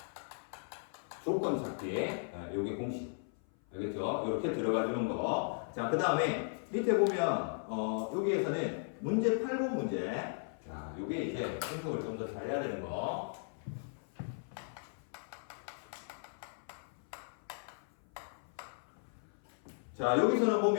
조건 찾기. 요게 공식. 알겠죠? 이렇게 들어가 주는 거. 자, 그 다음에 밑에 보면 여기에서는 문제 8번 문제. 자, 요게 이제 분석을 좀 더 잘해야 되는 거. 자, 여기서는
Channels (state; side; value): silent; right; 53 dB below the other